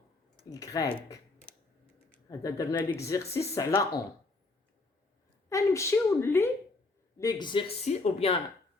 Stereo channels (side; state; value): right; quieter; 3.3 dB